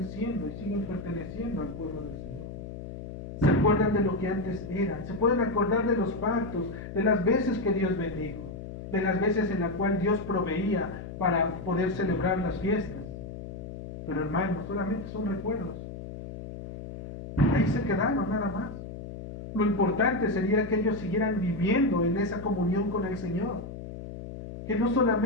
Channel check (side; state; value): left; noise; hum, 10 dB below the sound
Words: siendo y siguen perteneciendo al pueblo del Señor. Se acuerdan de lo que antes eran, se pueden acordar de los pactos, de las veces que Dios bendijo, de las veces en las cuales Dios proveía para poder celebrar las fiestas. Pero hermanos, solamente son recuerdos. Ahí se quedaron nada más. Lo importante sería que ellos siguieran viviendo en esa comunión con el Señor. Que no